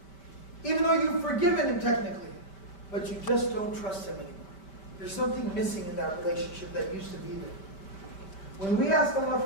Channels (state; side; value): late; right; 5.1 ms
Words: Even though you've forgiven him technically, but you just don't trust him anymore. There's something missing in that relationship that used to be there. When we ask Allah